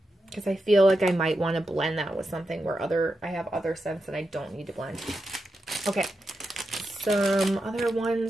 because I feel like I might want to blend that with something where I have other scents that I don't need to blend. Okay, some other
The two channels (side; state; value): both; normal; correlation 0.88